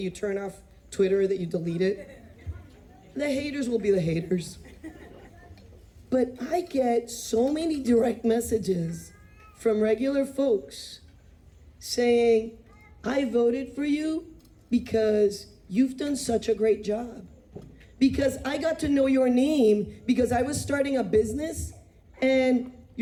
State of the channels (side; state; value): both; identical; correlation 1.00